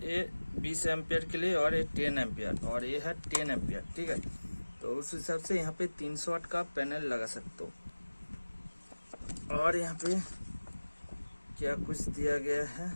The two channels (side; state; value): both; inverted; correlation -1.00